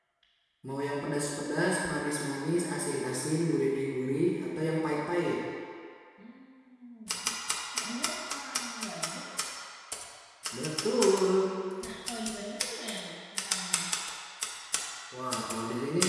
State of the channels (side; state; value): both; identical; correlation 1.00